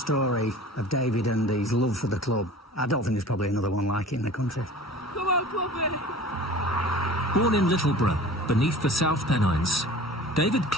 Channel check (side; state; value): both; normal; correlation 0.42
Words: of David and his love for the club, I don't think there's probably another one like it in the country. Come on, Cloughy! Born in Littleborough, beneath the South Pennines, David